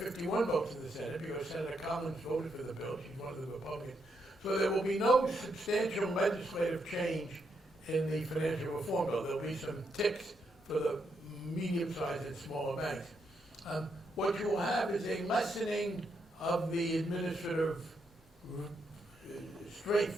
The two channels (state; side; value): normal; both; correlation 0.79